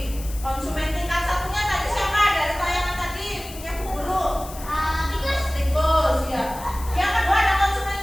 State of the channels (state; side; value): noise; left; hiss, 15 dB below the sound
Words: konsumen tingkat 1-nya tadi siapa? Dari tayangan tadi punya Bu Guru. Tikus ya.